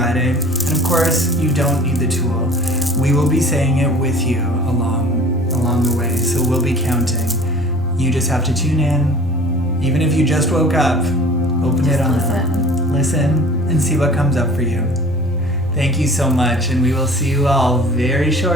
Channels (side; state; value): both; normal; correlation 0.46